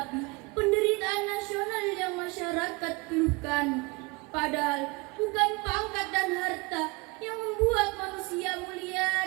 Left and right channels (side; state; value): left; quieter; 26.2 dB